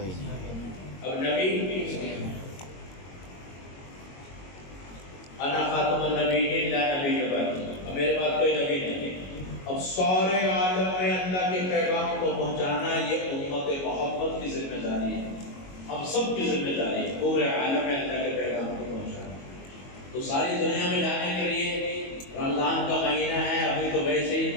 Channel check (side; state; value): right; late; 22 ms